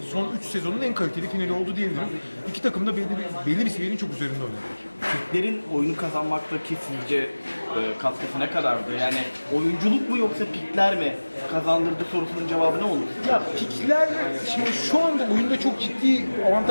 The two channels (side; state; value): both; inverted; correlation -1.00